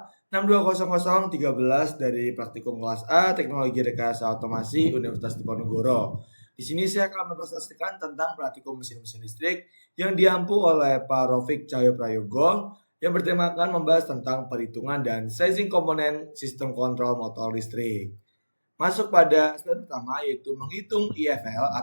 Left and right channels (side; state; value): both; inverted; correlation -1.00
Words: dari Praktikum Kelas A Teknologi Rekayasa Otomasi Universitas Diponegoro. Di sini saya akan mempresentasikan tentang praktikum mesin-mesin listrik yang diampu oleh Pak Rofik Cahyo Prayogo yang bertemakan membahas tentang perhitungan dan sizing komponen sistem kontrol motor listrik. Masuk pada step pertama yaitu menghitung IFL